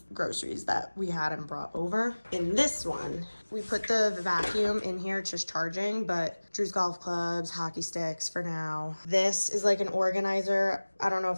groceries that we had and brought over. In this one, we put the vacuum in here, it's just charging, but Drew's golf clubs, hockey sticks for now. This is like an organizer. I don't know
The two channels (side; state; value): both; inverted; correlation -1.00